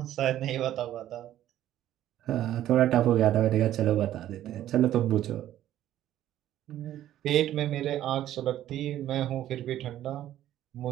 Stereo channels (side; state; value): left; quieter; 12.6 dB